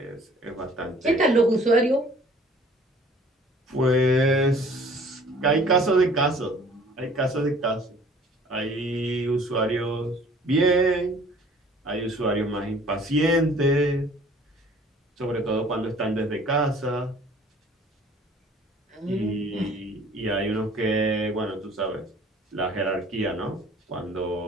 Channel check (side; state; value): both; normal; correlation 0.53